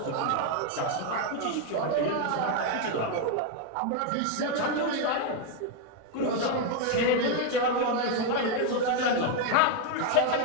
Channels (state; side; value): different; both; correlation 0.01